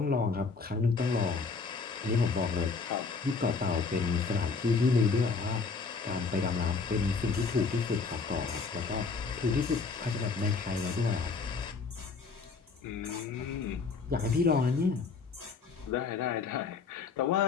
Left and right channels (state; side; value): quieter; right; 4.6 dB